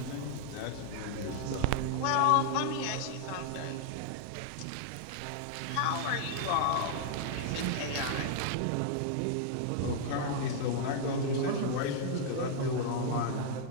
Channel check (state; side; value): different; both; correlation -0.01